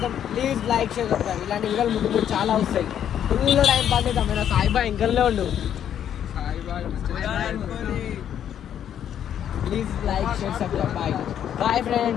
ప్లీజ్ లైక్ షేర్ సబ్స్క్రైబ్. ఇలాంటి వీడియోలు ముందు చాలా వస్తాయి. ఫుల్ టైం పాస్ చేద్దాం. సాయి బాయ్ ఇంకల్నే ఉండు. Please like share subscribe. Bye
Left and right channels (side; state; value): right; quieter; 9.7 dB